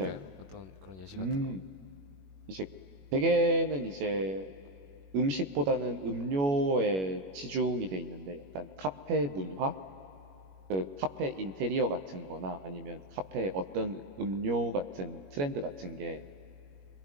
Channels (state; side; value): late; left; 21 ms